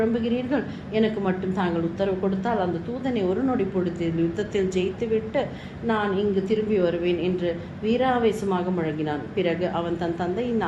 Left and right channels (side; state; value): both; identical; correlation 1.00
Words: எனக்கு மட்டும் தாங்கள் உத்தரவு கொடுத்தால் அந்த தூதனை ஒரு நொடி பொழுதில் யுத்தத்தில் ஜெயித்துவிட்டு நான் இங்கு திரும்பி வருவேன் என்று வீராவேசமாக முழங்கினான். பிறகு அவன் தன் தந்தையின்